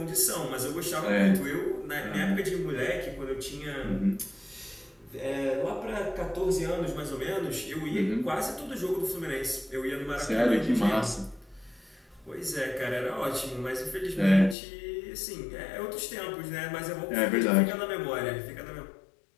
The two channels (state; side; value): drops out; right; at 14.6 s